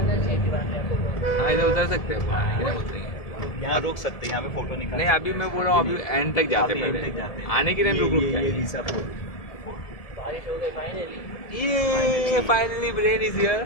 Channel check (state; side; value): late; right; 1.7 ms